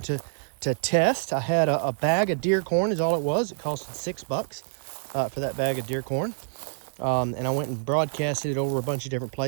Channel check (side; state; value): left; silent; digital silence